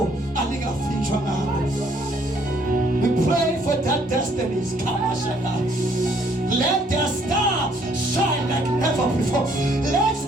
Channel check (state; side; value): normal; both; correlation 0.65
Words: alingafinjwa ngabo. We pray for that destinies. Let their star shine like never before.